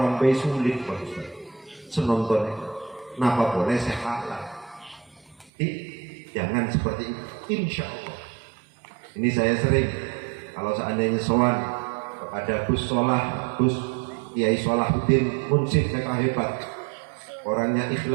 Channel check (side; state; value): left; drops out; at 5.5 s